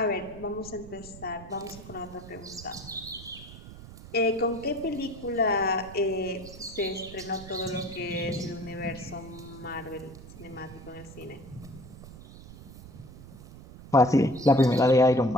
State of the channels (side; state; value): right; noise; rumble, 16 dB below the sound